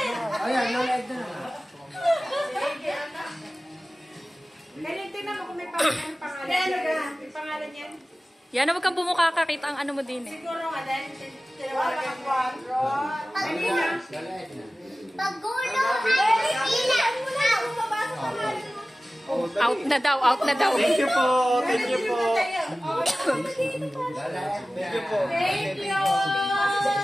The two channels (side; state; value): both; normal; correlation 0.97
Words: Ayan, no-like na. Ganyan, tingnan mo kung may pangalan. May pangalan yan. Yan, huwag kang bumukha ka. Kita ang ano mo din eh. Siguro nga dahil tinawagan ang 4. Kanina. Pagulo ay sila. Out na daw, out na daw. Thank you po. Thank you po. Thank you po. Thank you.